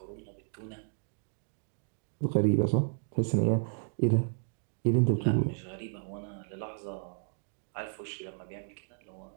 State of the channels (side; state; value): left; silent; 56 dB below the other